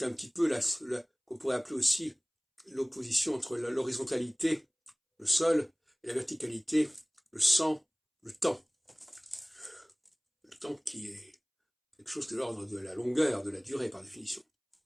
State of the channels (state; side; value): identical; both; correlation 1.00